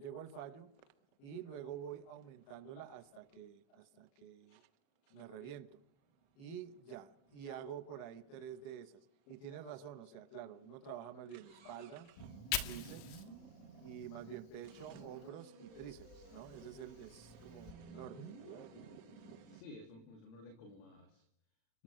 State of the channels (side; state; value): right; late; 35 ms